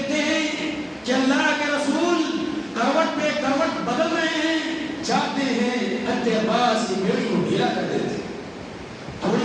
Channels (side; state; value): both; identical; correlation 1.00